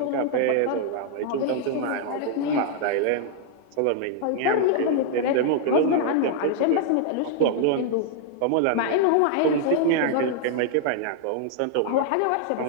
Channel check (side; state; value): both; different; correlation 0.00